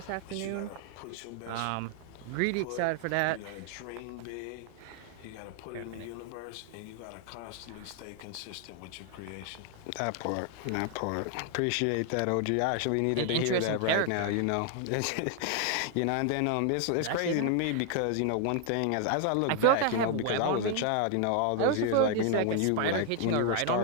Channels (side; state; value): both; different; correlation 0.00